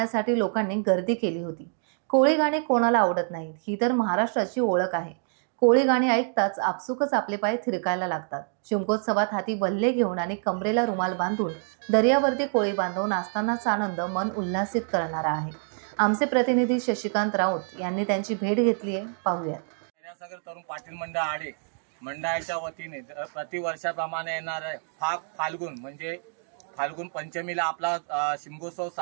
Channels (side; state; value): left; silent; 60 dB below the other